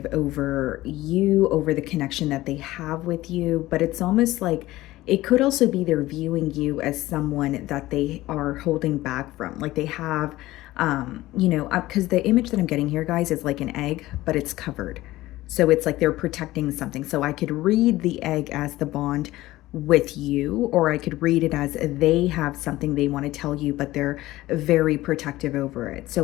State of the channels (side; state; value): right; quieter; 17.1 dB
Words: over you, over the connection that they have with you, but it's almost like it could also be they're viewing you as someone that they are holding back from. Like they have, because the image that I'm getting here, guys, is like an egg, but it's covered. So it's like they're protecting something. So I could read the egg as the bond with you, or I could read it as they have something they want to tell you, but they're very protective over it. So